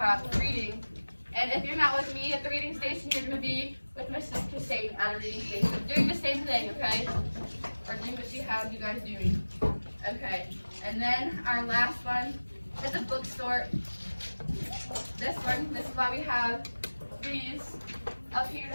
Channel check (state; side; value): inverted; both; correlation -1.00